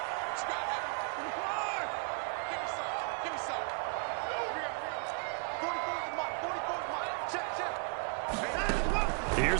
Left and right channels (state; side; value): quieter; left; 37.8 dB